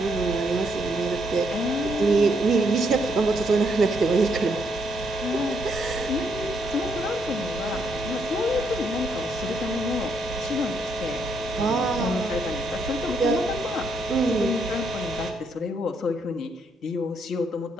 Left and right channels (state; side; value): normal; both; correlation 0.74